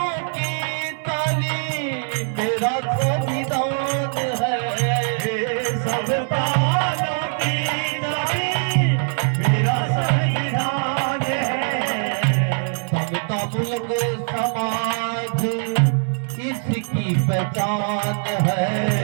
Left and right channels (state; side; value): silent; left; 60 dB below the other